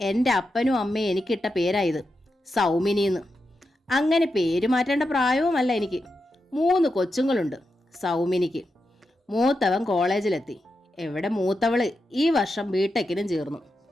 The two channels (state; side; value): normal; both; correlation 0.87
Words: എൻ്റെ അപ്പനും അമ്മയും എനിക്കിട്ട പേരായത്, സൗമിനിന്ന്. അങ്ങനെ പേര് മാറ്റേണ്ട പ്രായവുമല്ല എനിക്ക്. 3 കൊച്ചുങ്ങളുണ്ട് സൗമിനിക്ക്. മൂത്തവൻ കോളേജിലെത്തി. എവിടെ മൂത്തവള് ഈ വർഷം ബിടെക്കിനും ചേർന്നു.